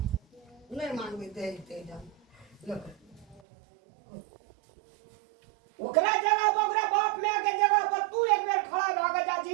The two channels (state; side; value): drops out; left; at 3.4 s